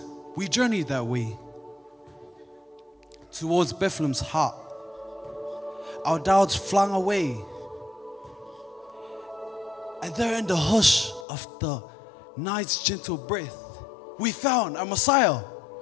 we journeyed that way towards Bethlehem's heart. Our doubts flung away, and there in the hush of the night's gentle breath, we found our Messiah,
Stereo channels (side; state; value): right; drops out; at 11.2 s